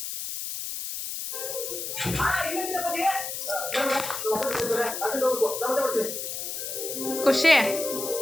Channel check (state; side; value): noise; left; hiss, 5 dB below the sound